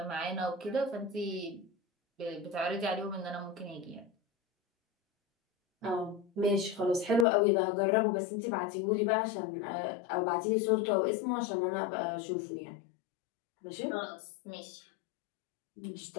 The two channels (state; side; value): drops out; right; at 7.2 s